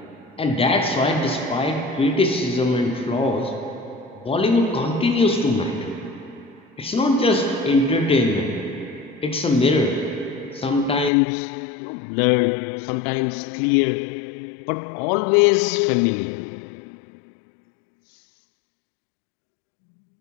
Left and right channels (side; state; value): right; drops out; at 11.1 s